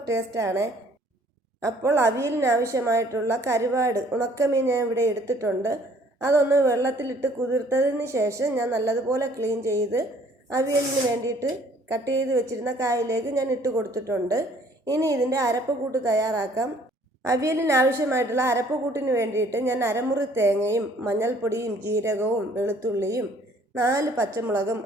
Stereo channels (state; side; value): normal; both; correlation 0.58